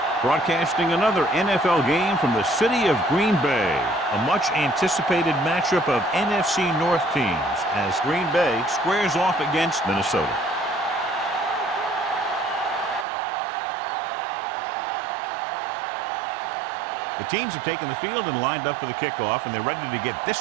Broadcasting another NFL game from the city of Green Bay. A much-anticipated matchup of NFC North teams as Green Bay squares off against Minnesota. The teams have taken the field and lined up for the kickoff, and they're ready to get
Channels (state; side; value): drops out; left; at 13.1 s